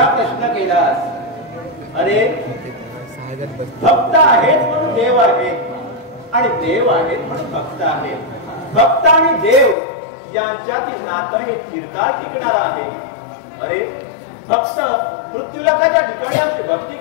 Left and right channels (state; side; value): drops out; right; at 9.8 s